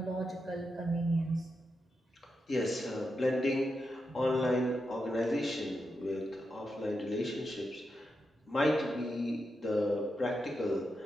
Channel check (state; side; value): normal; both; correlation 0.86